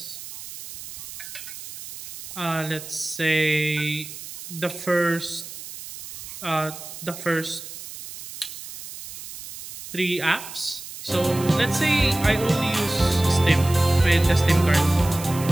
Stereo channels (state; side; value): noise; right; hiss, 12 dB below the sound